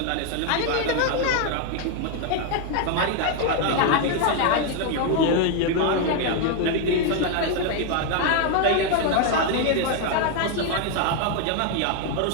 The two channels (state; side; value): different; both; correlation 0.00